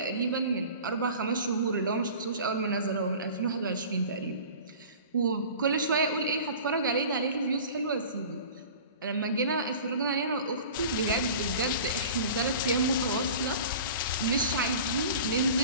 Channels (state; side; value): inverted; both; correlation -0.40